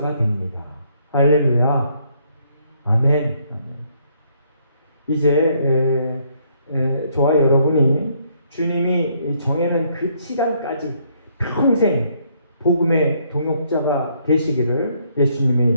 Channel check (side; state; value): both; inverted; correlation -0.69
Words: 됩니다. 할렐루야. 아멘. 이제 저와 여러분이 주님이 정해놓은 그 시간까지 평생 복음의 동역자가 되시기를 예수님의